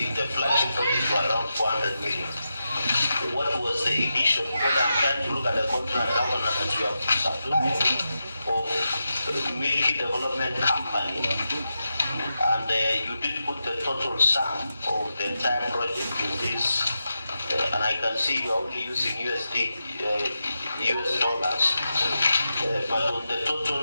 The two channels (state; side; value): inverted; both; correlation -0.89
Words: in the flagship project were around 400 million. What was the initial? Because I'm trying to look at the contract governor that you have supplied of Milky Development Company, and you didn't put the total sum of the entire project in this. And I can see you're only using US dollars, but on the